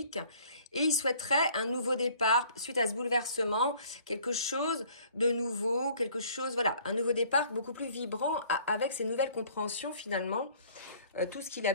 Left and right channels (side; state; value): both; inverted; correlation -0.55